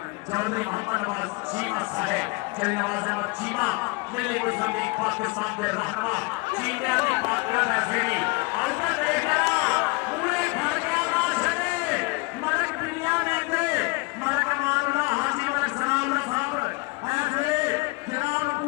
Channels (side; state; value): right; quieter; 27.1 dB